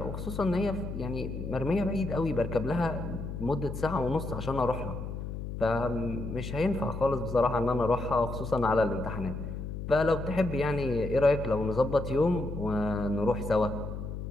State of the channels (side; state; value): left; noise; hum, 6 dB below the sound